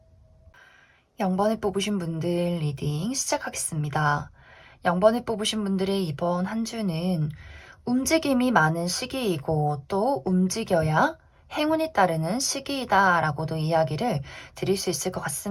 0번을 뽑으신 분들 리딩 시작하겠습니다. 0번을 뽑으신 분들의 이번 한 주는 움직임이 많은 시기이고, 또 움직여야 행운이 따르는 시기이다라고도 이야기를 드릴 수 있을 것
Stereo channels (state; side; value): identical; both; correlation 1.00